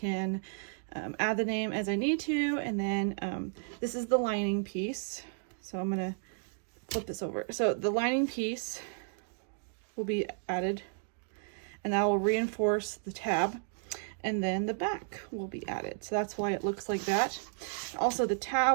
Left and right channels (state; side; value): silent; left; digital silence